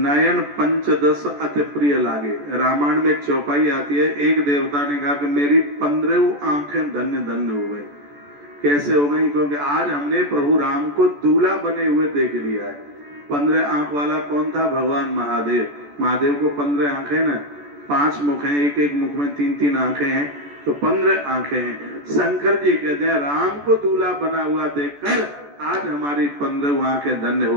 पंचदश अति प्रिय लागे, रामायण में एक चौपाई आती है। एक देवता ने कहा कि मेरी 15 आंखें धन्य धन्य हो गई। कैसे हो गई? क्योंकि आज हमने प्रभु राम को दूल्हा बने हुए देख लिया है। 15 आंख वाला कौन था? भगवान महादेव। महादेव को 15 आंखें ना, 5 मुख हैं, एक एक मुख में 3-3 आंखें हैं, तो 15 आंखें हैं। शंकर जी कहते हैं राम को दूल्हा बना हुआ देखकर आज हमारी 15 आंखें धन्य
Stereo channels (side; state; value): left; late; 14 ms